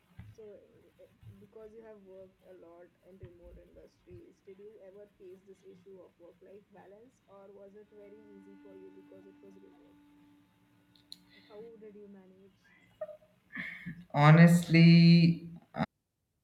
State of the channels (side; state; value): both; identical; correlation 1.00